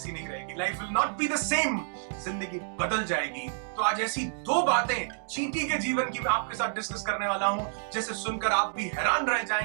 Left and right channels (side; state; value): left; silent; digital silence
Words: नहीं रहेगी। Life will not be the same, जिंदगी बदल जाएगी। तो आज ऐसी दो बातें चींटी के जीवन की मैं आपके साथ डिस्कस करने वाला हूं, जैसे सुनकर आप भी हैरान रह